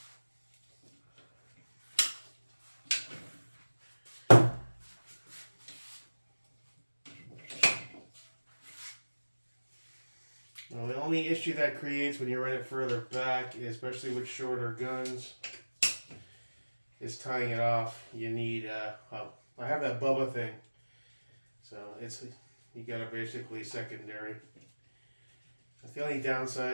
Well, the only issue that creates when you run it further back, especially with shorter guns, is tying it off. You need, oh, I have that Bubba thing. So it's, you got a basically secondary. That's the only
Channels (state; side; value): inverted; both; correlation -1.00